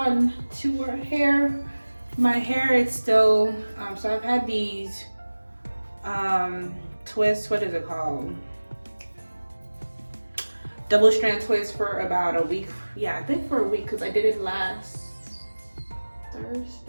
to our hair. My hair is still, so I've had these twists, what is it called? Double strand twists for about a week. Yeah, I think for a week, because I did it last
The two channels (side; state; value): both; inverted; correlation -1.00